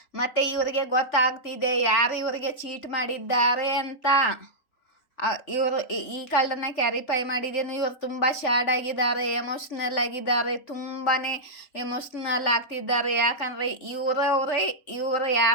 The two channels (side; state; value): right; late; 3.4 ms